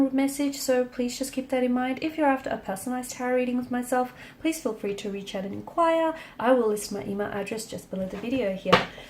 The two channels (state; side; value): identical; both; correlation 1.00